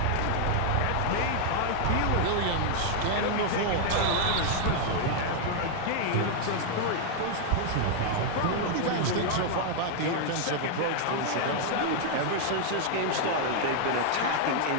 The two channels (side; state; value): both; different; correlation 0.00